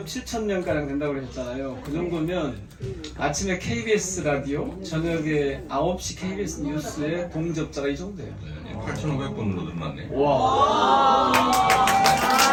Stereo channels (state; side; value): identical; both; correlation 1.00